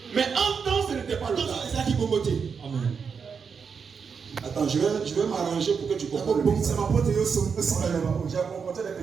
Mais en temps, ce n'était pas le cas. Amen. Attends, je vais m'arranger pour que tu comprennes. C'est ma pote et aussi. J'ai raconté des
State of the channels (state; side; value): quieter; left; 6.0 dB